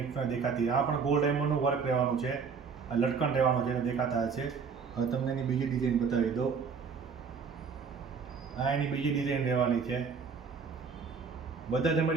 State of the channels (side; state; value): left; quieter; 5.7 dB